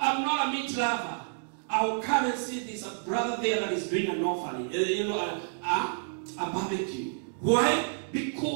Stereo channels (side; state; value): left; silent; digital silence